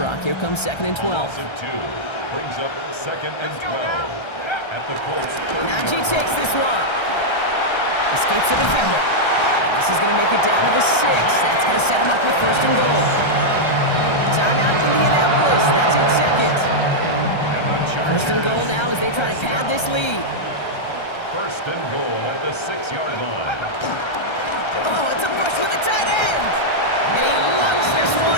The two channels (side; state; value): right; late; 1.3 ms